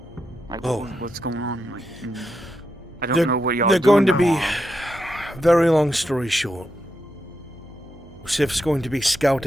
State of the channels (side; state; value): both; normal; correlation 0.84